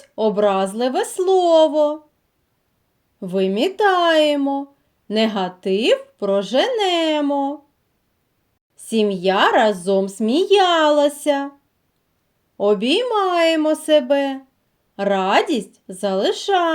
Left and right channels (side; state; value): both; identical; correlation 1.00